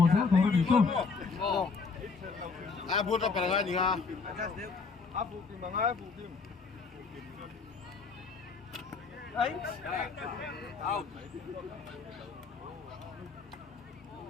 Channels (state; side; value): quieter; right; 4.7 dB